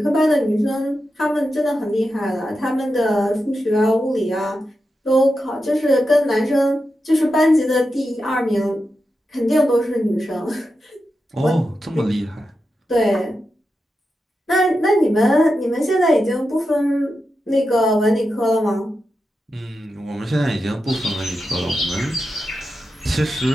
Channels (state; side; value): normal; both; correlation 0.89